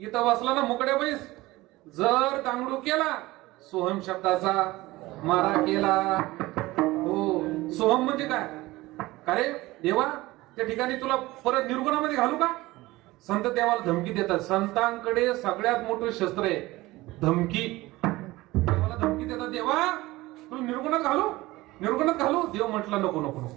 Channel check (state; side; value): quieter; left; 19.2 dB